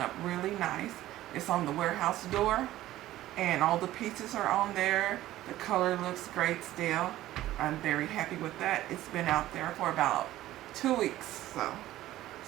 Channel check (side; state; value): left; quieter; 14.8 dB